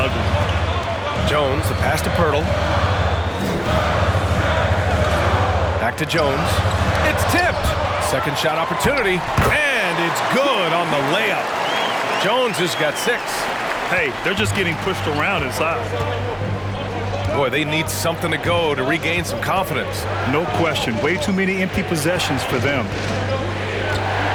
Jones, the pass to Poeltl. Back to Jones. It's tipped. Second shot opportunity. And it's good on the layup. Jones has got 6. Hey, they're just getting pushed around inside. Boy, they need something to go to regain some confidence. No question. Way too many empty possessions for them.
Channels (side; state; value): both; identical; correlation 1.00